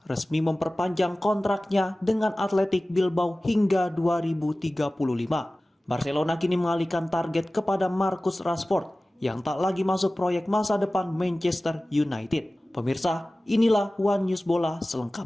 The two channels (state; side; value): normal; both; correlation 0.97